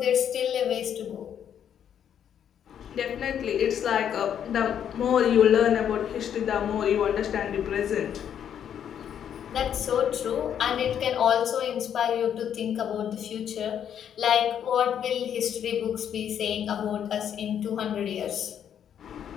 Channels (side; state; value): right; quieter; 9.1 dB